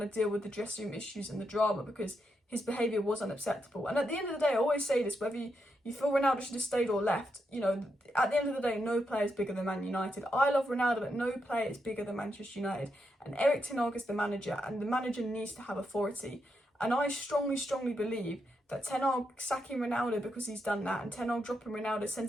to deal with the dressing room issues and the drama because his behaviour was unacceptable. And at the end of the day, I always say this, whether you feel Ronaldo should have stayed or left, at the end of the day, no player is bigger than Man United. I love Ronaldo, but no player is bigger than Manchester United. And Erik Ten Hag is the manager, and the manager needs to have authority. And I strongly, strongly believe that Ten Hag sacking Ronaldo because he's done that, and Ten Hag dropping Ronaldo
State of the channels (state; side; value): normal; both; correlation 0.82